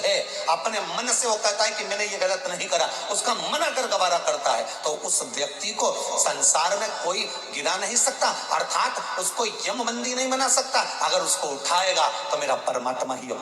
अपने मन से वो कहता है कि मैंने ये गलत नहीं करा, उसका मन अगर गवारा करता है, तो उस व्यक्ति को संसार में कोई गिरा नहीं सकता, अर्थात उसको यमबंदी नहीं बना सकता। अगर उसको उठाएगा तो मेरा परमात्मा ही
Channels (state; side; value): identical; both; correlation 1.00